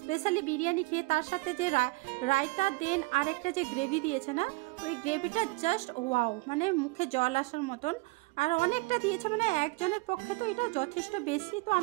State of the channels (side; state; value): left; quieter; 25.5 dB